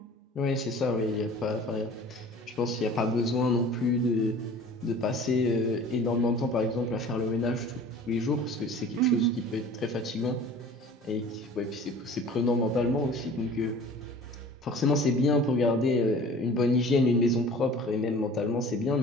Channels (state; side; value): normal; both; correlation 0.45